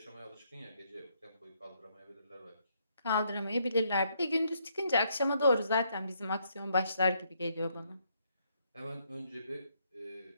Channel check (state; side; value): inverted; both; correlation -0.73